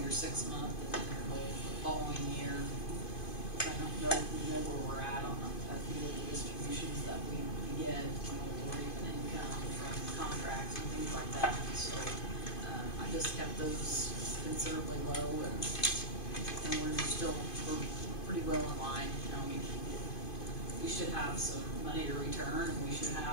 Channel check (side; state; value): right; late; 2.5 ms